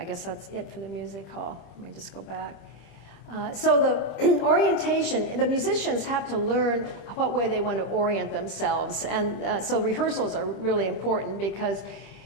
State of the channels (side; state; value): right; late; 25 ms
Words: guess that's it for the music hall. Let me just go back. So the orientation, the musicians have to learn what way they want to orient themselves. And so rehearsals are really important because